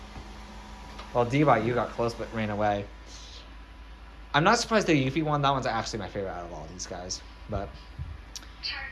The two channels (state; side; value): identical; both; correlation 1.00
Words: Well, D-Bot, you got close but ran away. I'm not surprised the Eevee one. That one's actually my favorite out of all these guys. But